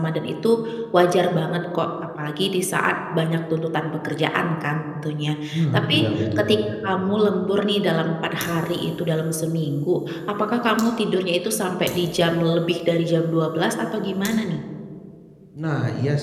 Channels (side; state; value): both; identical; correlation 1.00